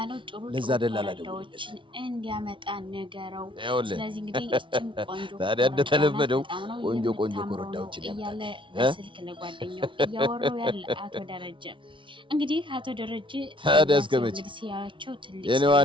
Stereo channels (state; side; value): late; left; 0.24 ms